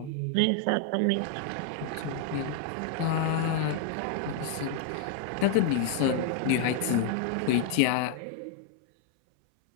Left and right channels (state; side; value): different; both; correlation 0.00